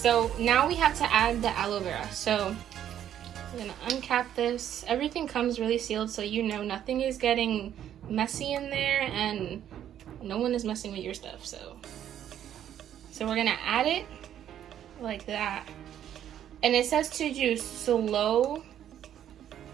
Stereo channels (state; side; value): quieter; left; 10.5 dB